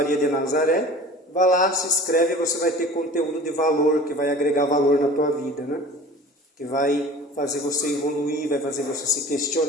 de Nazaré. Vá lá, se inscreve e você vai ter conteúdo de valor, que vai agregar valor na tua vida, né? Que vai fazer você evoluir, vai fazer você se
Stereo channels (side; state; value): both; normal; correlation 0.42